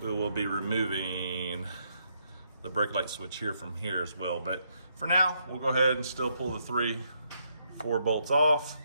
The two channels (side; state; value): both; inverted; correlation -0.75